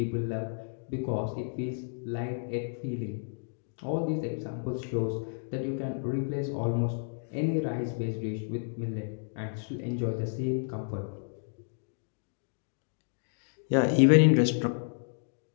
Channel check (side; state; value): right; silent; digital silence